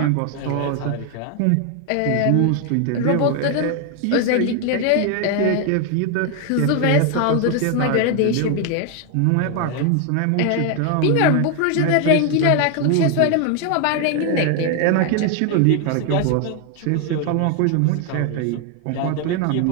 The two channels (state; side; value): different; both; correlation 0.01